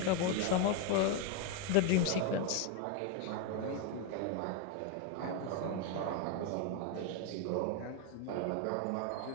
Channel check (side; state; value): both; different; correlation 0.01